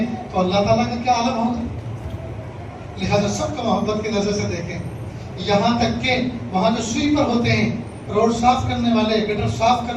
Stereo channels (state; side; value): identical; both; correlation 1.00